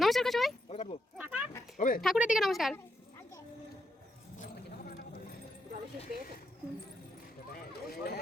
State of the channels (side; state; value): both; normal; correlation 0.80